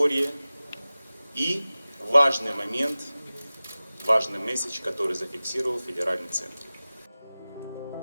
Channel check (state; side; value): inverted; both; correlation -0.97